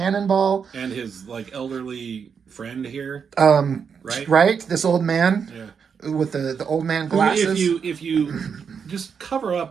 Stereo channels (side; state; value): left; quieter; 6.5 dB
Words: And his like elderly friend here. Right? Right? This old man. Yeah. With the old man glasses. If you just cover